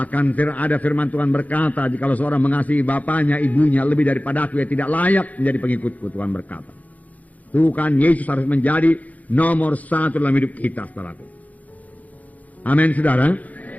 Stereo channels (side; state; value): right; late; 0.075 ms